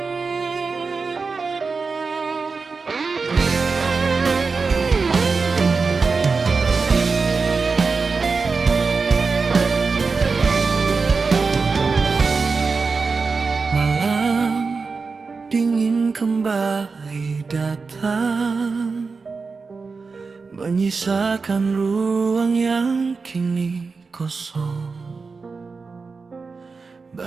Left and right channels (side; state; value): left; quieter; 4.5 dB